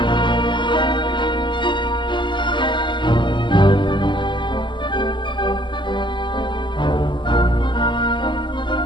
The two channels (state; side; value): late; right; 0.23 ms